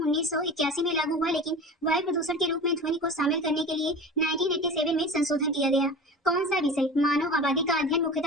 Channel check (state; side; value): normal; both; correlation 0.34